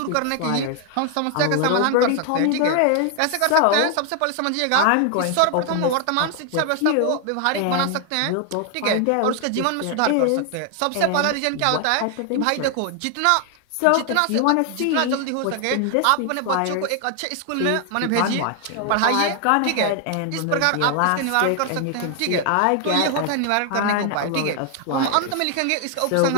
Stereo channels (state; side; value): different; both; correlation 0.00